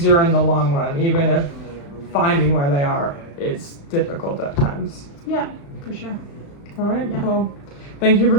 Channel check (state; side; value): late; right; 35 ms